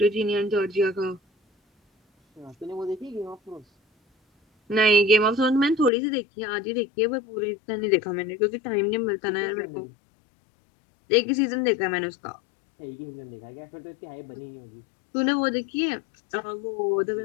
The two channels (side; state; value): right; drops out; at 5.9 s